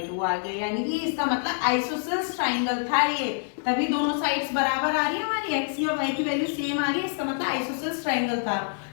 आ गए, यानी कि इसका मतलब आइसोसेलेस ट्राइंगल था ये, तभी दोनों साइड्स बराबर आ रही है, हमारी x और y की वैल्यू सेम आ रही है, इसका मतलब आइसोसेलेस ट्राइंगल था।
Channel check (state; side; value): silent; right; digital silence